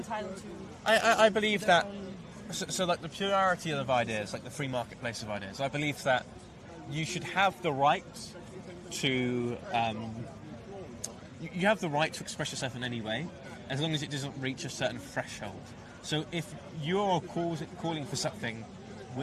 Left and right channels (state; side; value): identical; both; correlation 1.00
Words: to? I believe that. So like the plurality of ideas, like the free marketplace of ideas. I believe that you should have the right to. You have the right to express yourself in any way, as long as it doesn't reach a certain threshold. So if you're calling for something